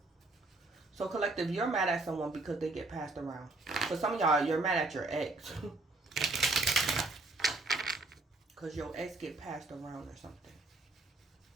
So collective, you're mad at someone because they get passed around. For some of y'all, you're mad at your ex. Because your ex get passed around or something.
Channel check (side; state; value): left; quieter; 3.2 dB